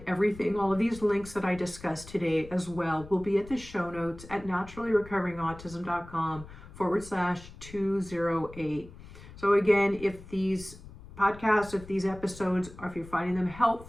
everything, all of these links that I discussed today as well will be at the show notes at naturallyrecoverinautism.com/208. So again, if these podcasts, if these episodes, or if you're finding them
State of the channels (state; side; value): noise; left; rumble, 17 dB below the sound